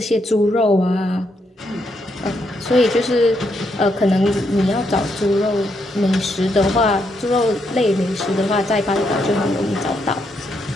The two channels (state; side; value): normal; both; correlation 0.78